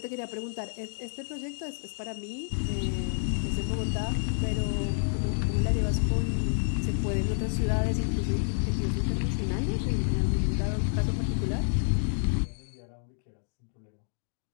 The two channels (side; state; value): right; silent; digital silence